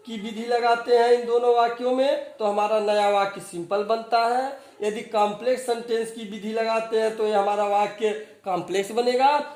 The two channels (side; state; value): both; identical; correlation 1.00